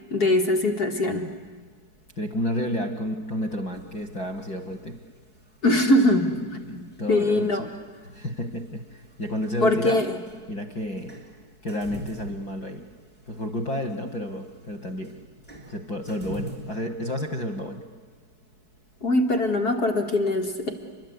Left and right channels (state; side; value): late; right; 4.7 ms